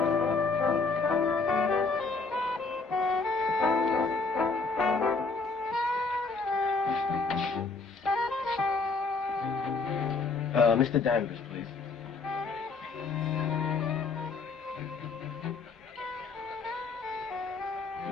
Mr. Danvers, please.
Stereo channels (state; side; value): quieter; right; 4.1 dB